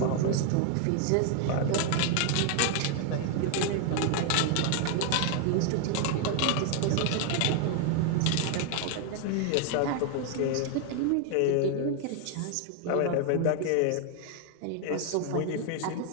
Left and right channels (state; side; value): different; both; correlation 0.00